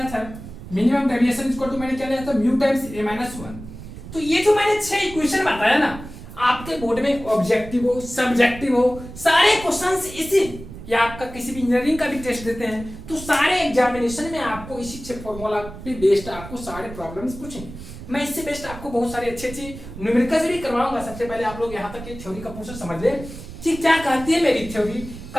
था, मिनिमम डेविएशन इक्वल टू मैंने क्या लिया था, म्यू टाइम्स a-1। तो ये जो मैंने 6 इक्वेशन बताया ना, आपके बोर्ड में ऑब्जेक्टिव हो, सब्जेक्टिव हो, सारे क्वेश्चंस इसी, या आपका किसी भी इंजीनियरिंग का भी टेस्ट देते हैं तो सारे एग्जामिनेशन में आपको इसी 6 फॉर्मूला पे बेस्ड आपको सारे प्रॉब्लम्स पूछेंगे। मैं इससे बेस्ट आपको बहुत सारी अच्छी न्यूमेरिकल्स भी करवाऊंगा। सबसे पहले आप लोग यहाँ तक की थ्योरी का पोर्शन समझ ले कि क्या कहती है मेरी थ्योरी,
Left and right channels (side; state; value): right; noise; rumble, 13 dB below the sound